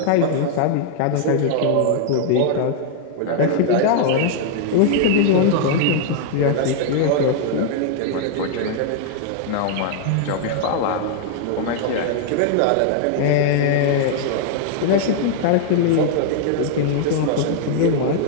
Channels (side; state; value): both; different; correlation -0.01